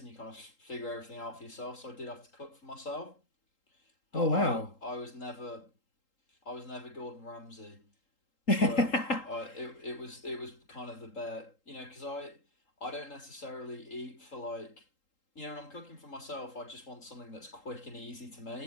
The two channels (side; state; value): right; late; 3.8 ms